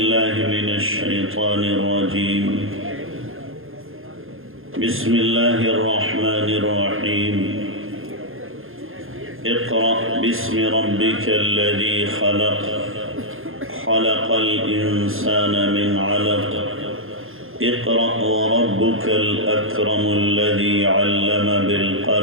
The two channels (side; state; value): left; late; 0.60 ms